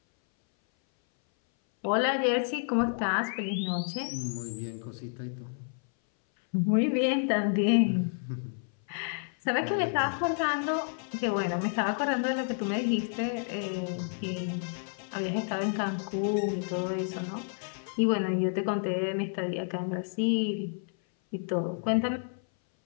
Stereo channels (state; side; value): silent; right; 58 dB below the other